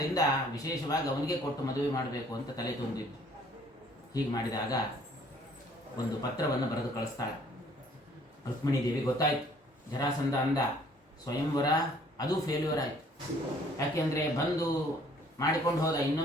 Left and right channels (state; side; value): normal; both; correlation 0.59